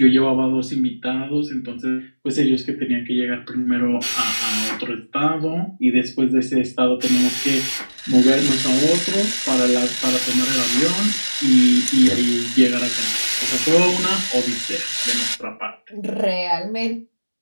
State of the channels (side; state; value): both; inverted; correlation -1.00